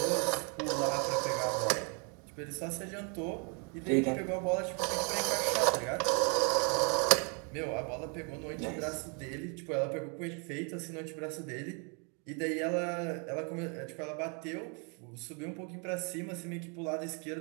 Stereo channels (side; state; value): left; quieter; 36.7 dB